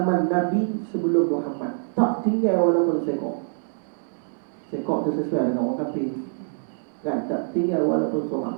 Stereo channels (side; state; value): left; silent; digital silence